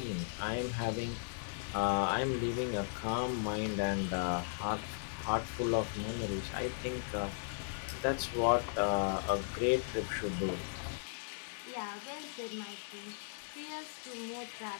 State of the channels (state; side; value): silent; right; digital silence